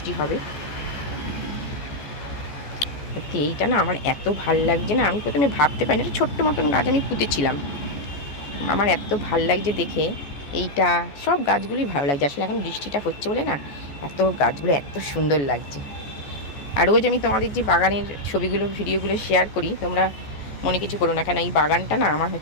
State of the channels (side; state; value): right; late; 14 ms